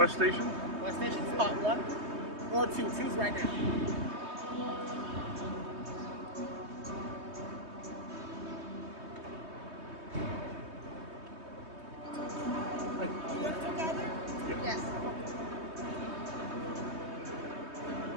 Station? West Station, spot 1 or 2. Choose right now. Yes.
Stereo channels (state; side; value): late; left; 3.2 ms